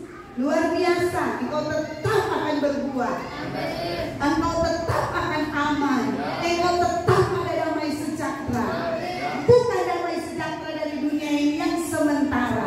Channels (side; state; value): both; identical; correlation 1.00